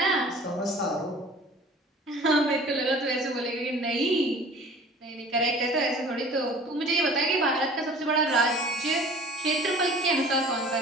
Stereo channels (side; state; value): both; normal; correlation 0.46